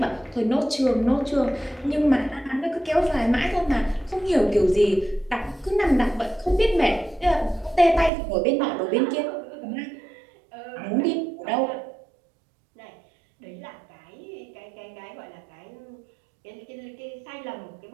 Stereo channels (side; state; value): left; drops out; at 8.1 s